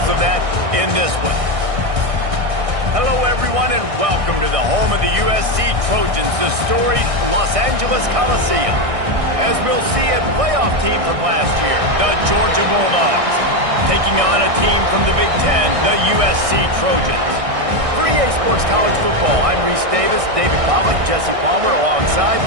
of that in this one. Hello, everyone, and welcome to the home of the USC Trojans, the storied Los Angeles Coliseum. As we'll see, a playoff team from last year, the Georgia Bulldogs, taking on a team from the Big Ten, the USC Trojans. For EA Sports College Football, I'm Reese Davis, David Pollack, Jesse Palmer alongside.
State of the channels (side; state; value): left; late; 1.6 ms